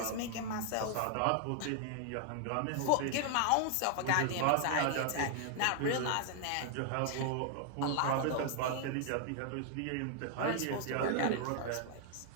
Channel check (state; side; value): different; both; correlation 0.00